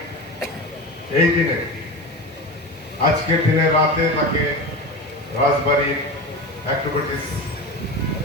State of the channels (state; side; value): normal; both; correlation 0.26